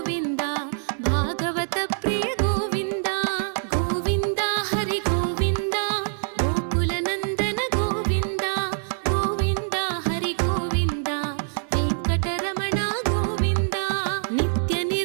భాగవత ప్రియ గోవింద గోవింద హరి గోవింద గోకుల నందన గోవింద గోవింద హరి గోవింద వెంకటరమణ గోవింద నిత్య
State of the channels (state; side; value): silent; left; digital silence